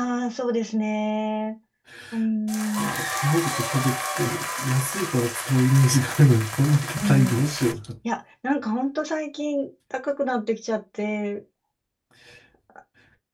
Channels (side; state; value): both; identical; correlation 1.00